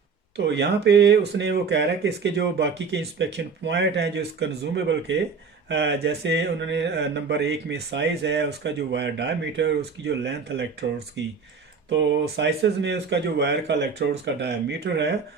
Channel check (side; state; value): left; quieter; 5.2 dB